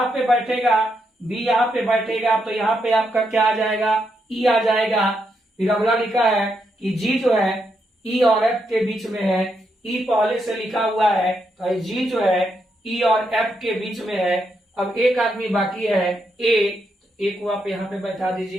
पे बैठेगा, बी यहाँ पे बैठेगा, तो यहाँ पे आपका क्या आ जाएगा, ई आ जाएगा। फिर अगला लिखा है कि जी ई और एफ के बीच में है। ई पहले से लिखा हुआ है, तो जी ई और एफ के बीच में है। अब एक आदमी बाकी है, ए को आप यहाँ पे बैठा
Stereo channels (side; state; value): both; normal; correlation 0.80